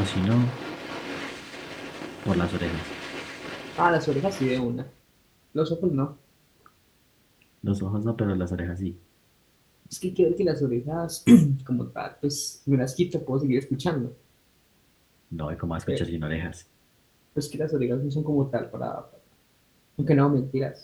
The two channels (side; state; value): both; identical; correlation 1.00